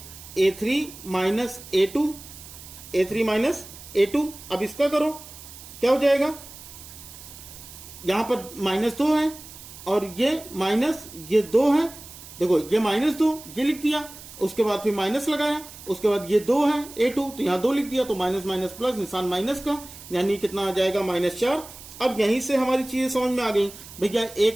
- a2, a3 - a2। अब इसका करो, क्या हो जाएगा? यहां पर -2 है और ये माइनस, ये 2 है। देखो ये -2 ये लिख दिया, उसके बाद फिर माइनस लगाया, उसके बाद ये 2 है a2, तो यहां 2 लिख दिया, तो माइनस प्लस, निशान माइनस का, यानी कितना आ जाएगा? -4। अब यहीं से हमारी चीजें समझ में आ गई भैया,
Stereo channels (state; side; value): noise; right; hiss, 16 dB below the sound